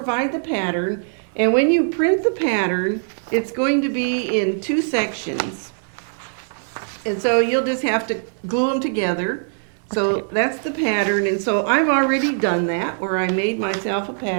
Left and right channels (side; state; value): left; silent; 62 dB below the other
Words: the pattern, and when you print the pattern, it's going to be in 2 sections. And so you'll just have to glue them together. So that's the pattern, and so I've already done that, where I made myself a